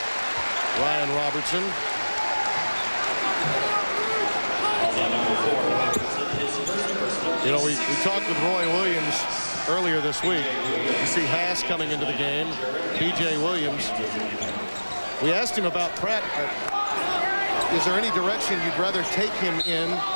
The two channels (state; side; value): inverted; both; correlation -1.00